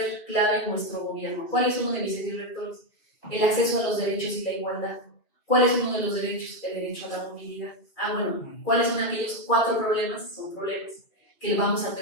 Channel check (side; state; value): right; late; 2.5 ms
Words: clave en nuestro gobierno. ¿Cuál es uno de mis ejes rectores? El acceso a los derechos y la igualdad. ¿Cuál es uno de los derechos? El derecho a la movilidad. Bueno, ¿cuáles son aquellos 4 problemas? Son problemas que vamos a